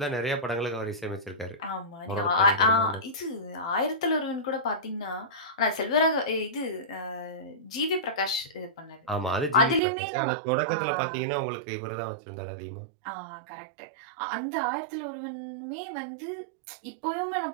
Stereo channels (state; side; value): drops out; left; at 9.8 s